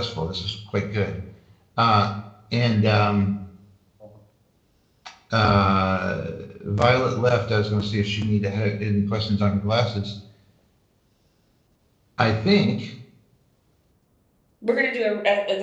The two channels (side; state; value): both; identical; correlation 1.00